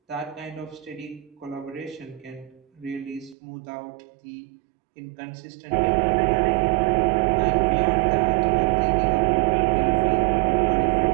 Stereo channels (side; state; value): left; drops out; at 3.4 s